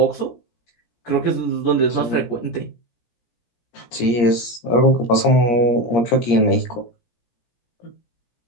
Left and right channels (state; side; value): late; right; 17 ms